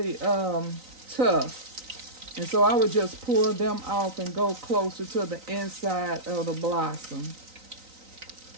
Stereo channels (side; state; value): left; late; 3.9 ms